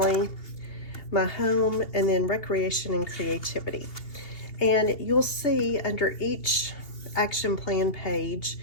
my home, and then recreation and creativity. And you'll see under each action plan page,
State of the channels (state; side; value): late; right; 2.8 ms